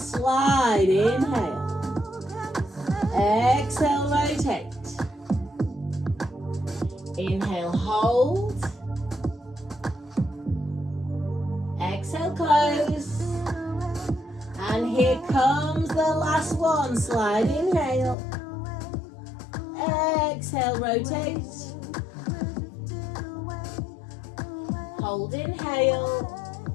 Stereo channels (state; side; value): drops out; right; at 18.2 s